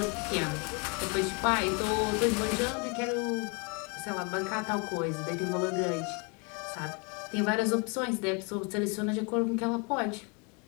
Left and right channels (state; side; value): quieter; right; 32.5 dB